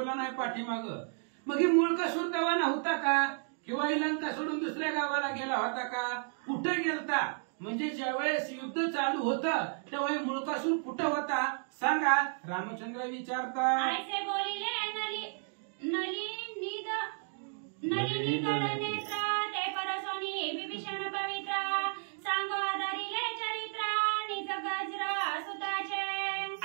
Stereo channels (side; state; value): left; silent; 56 dB below the other